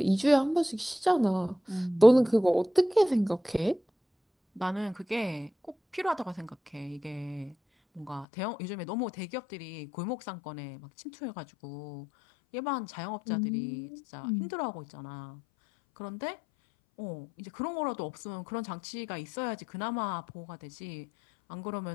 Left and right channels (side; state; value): right; drops out; at 8.2 s